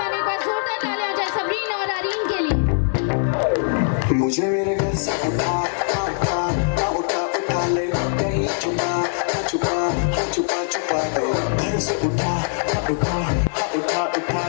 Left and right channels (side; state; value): right; silent; digital silence